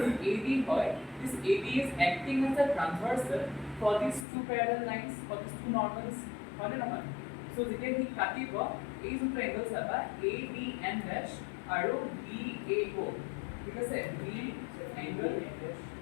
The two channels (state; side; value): drops out; right; at 4.2 s